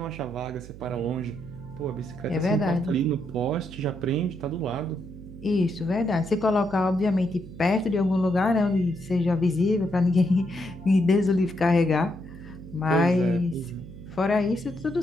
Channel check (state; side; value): noise; right; hum, 15 dB below the sound